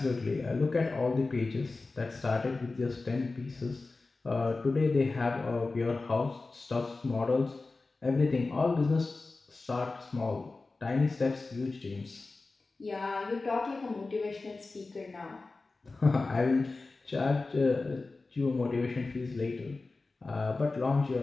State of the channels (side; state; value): right; quieter; 3.6 dB